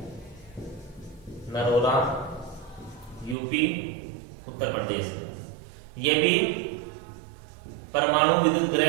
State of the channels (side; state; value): left; drops out; at 3.4 s